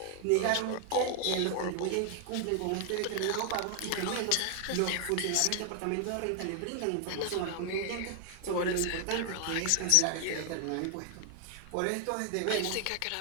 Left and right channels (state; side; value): different; both; correlation 0.00